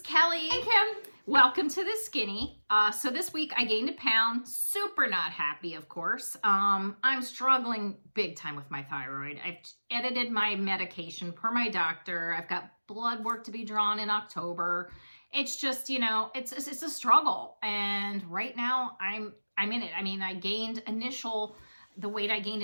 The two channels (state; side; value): inverted; both; correlation -1.00